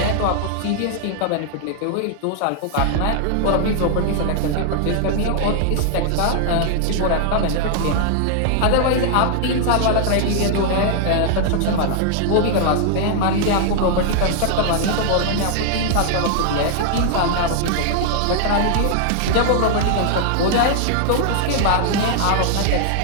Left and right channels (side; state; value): both; different; correlation 0.00